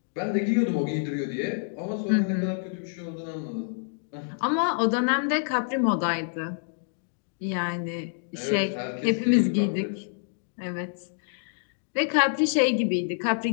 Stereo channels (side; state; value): right; silent; digital silence